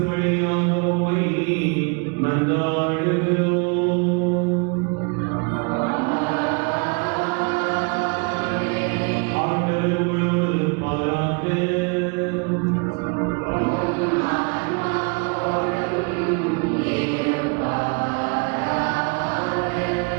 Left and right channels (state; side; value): quieter; left; 34.3 dB